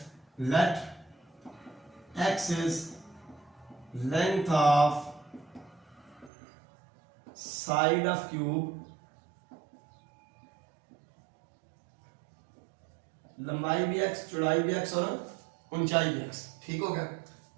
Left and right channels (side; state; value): left; drops out; at 6.3 s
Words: let x is length of side of cube, लंबाई भी x चौड़ाई भी x और ऊंचाई भी x। ठीक हो गया।